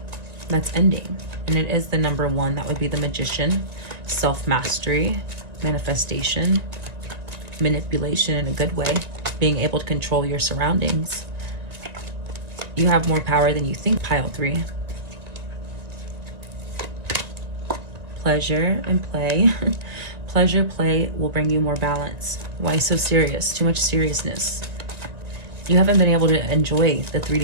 That's ending. And it is the number 1. That would be the Magician, self-mastery, manifestation, manipulation in a good way, being able to control your surroundings. You have more power than you think, pile 3. Pleasure and play. Pleasure, play will bring you more balance. Why so serious? Too much seriousness. You haven't been able to enjoy the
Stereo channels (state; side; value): late; left; 1.9 ms